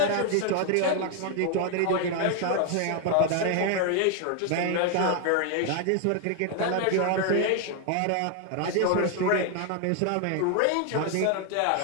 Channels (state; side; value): different; both; correlation 0.01